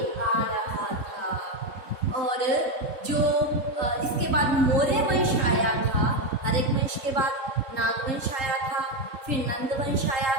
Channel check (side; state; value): left; late; 3.7 ms